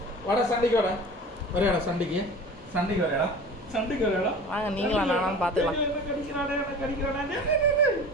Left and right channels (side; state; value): both; normal; correlation 0.38